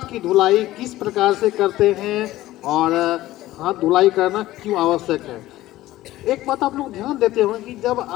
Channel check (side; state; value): right; quieter; 15.9 dB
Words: की धुलाई किस प्रकार से करते हैं और हाथ धुलाई करना क्यों आवश्यक है। एक बात आप लोग ध्यान देते होंगे कि जब